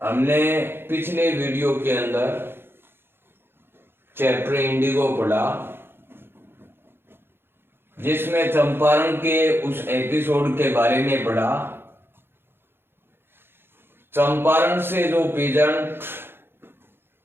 हमने पिछले video के अंदर चैप्टर इंडिगो पढ़ा, जिसमें चंपारण के उस एपिसोड के बारे में पढ़ा। चंपारण से जो पीजेंट,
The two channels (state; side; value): late; left; 0.11 ms